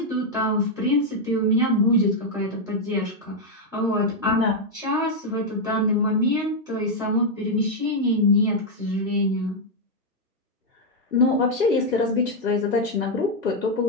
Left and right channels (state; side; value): normal; both; correlation 0.00